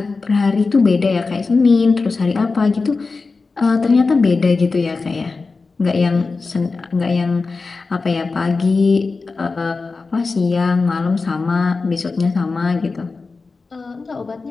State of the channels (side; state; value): right; quieter; 4.1 dB